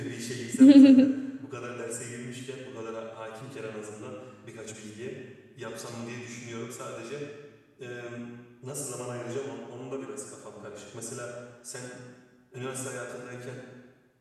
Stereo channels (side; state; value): both; identical; correlation 1.00